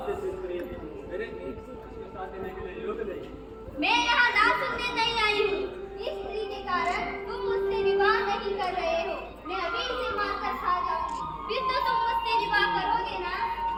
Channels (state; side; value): identical; both; correlation 1.00